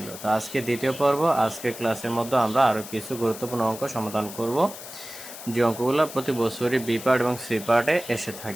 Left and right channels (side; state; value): left; noise; hiss, 13 dB below the sound